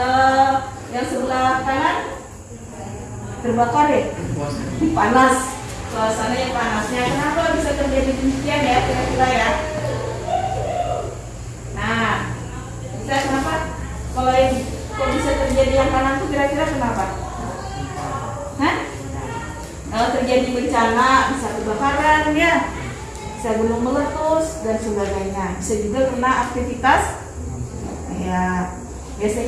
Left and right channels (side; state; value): both; identical; correlation 1.00